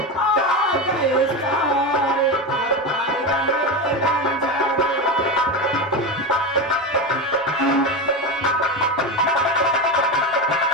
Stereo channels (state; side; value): normal; both; correlation 0.18